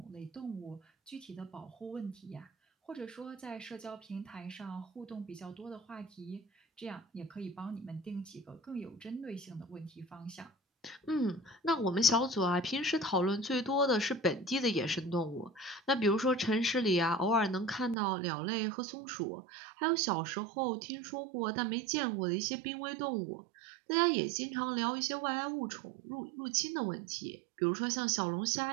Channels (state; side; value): drops out; left; at 17.9 s